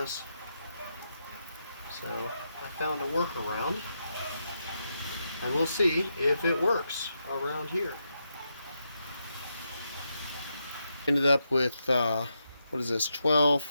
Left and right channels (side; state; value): both; inverted; correlation -0.84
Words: So I found a workaround. And we'll see if it works around here. Ended up with, what is this,